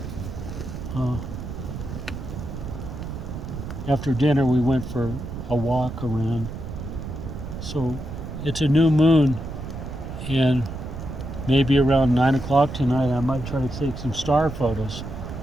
after dinner we went for a walk around. So it's a new moon, and maybe around 9 o'clock tonight I might try to take some star photos.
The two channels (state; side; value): noise; right; rumble, 8 dB below the sound